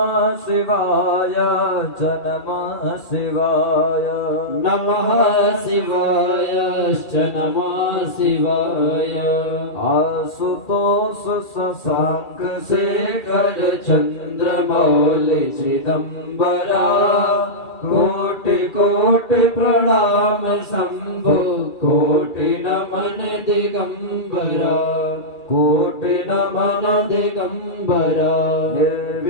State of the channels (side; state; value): right; late; 2.3 ms